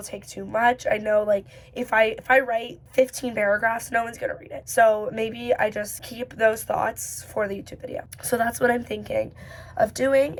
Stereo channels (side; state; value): both; identical; correlation 1.00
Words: take too much. I know if I write 15 paragraphs, no one's gonna read it. So maybe I just keep those thoughts for the YouTube video. So that's what I'm thinking of doing.